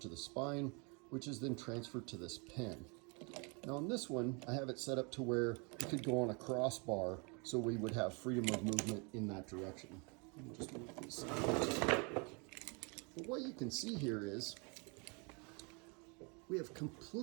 to the spine, which is then transferred to this pin. Now on this one, I have it set up to where it could go on a crossbar, so we would have freedom of movement in that direction. Let me just move this. But what you can see here is we have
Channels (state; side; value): quieter; left; 32.8 dB